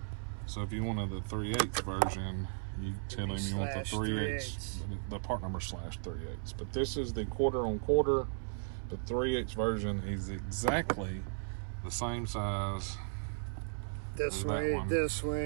So if you wanted the 3/8 version, you tell him you want the 3/8, the part number /3/8. But this is the 1/4 on 1/4. The 3/8 version is exactly the same size. This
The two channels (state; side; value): silent; left; 54 dB below the other